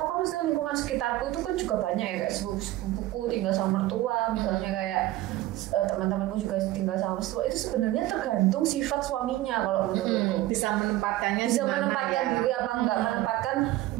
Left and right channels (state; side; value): quieter; left; 16.1 dB